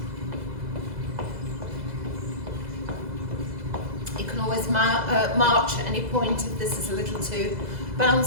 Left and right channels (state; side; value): late; left; 2.0 ms